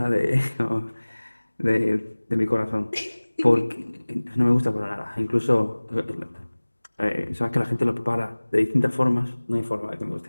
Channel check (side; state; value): both; inverted; correlation -1.00